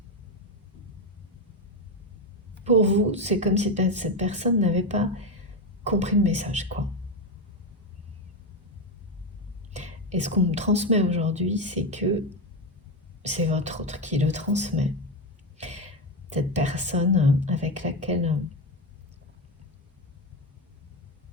pour vous, c'est comme si cette personne n'avait pas compris le message, quoi. Et ce qu'on me transmet aujourd'hui, c'est que c'est votre autre qui le transmet. Cette personne avec laquelle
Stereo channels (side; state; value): both; normal; correlation 0.12